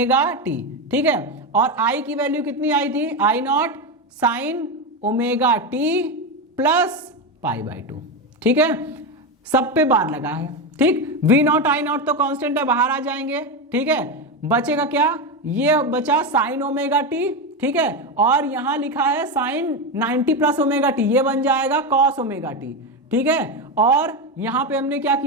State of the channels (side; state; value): both; normal; correlation 0.13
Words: t, ठीक है, और I की वैल्यू कितनी आई थी, I not sine omega T plus pi by 2, ठीक है। सब पे बार लगा है, ठीक। V नॉट I नॉट तो कांस्टेंट है, बाहर आ जाएंगे, ठीक है। बचेगा क्या, ये बचा साइन ओमेगा टी, ठीक है, और यहां लिखा है साइन 90 प्लस ओमेगा टी, ये बन जाएगा कॉस ओमेगा टी, ठीक है। और यहां पे हमने क्या